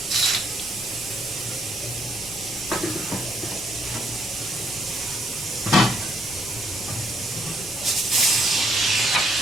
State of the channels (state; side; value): noise; right; rumble, 22 dB below the sound